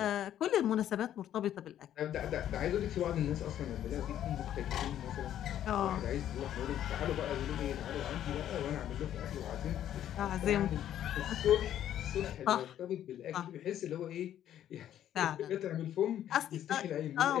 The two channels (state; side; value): quieter; right; 11.2 dB